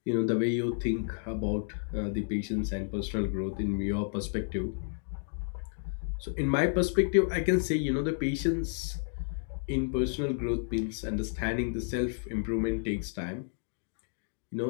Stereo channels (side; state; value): right; silent; digital silence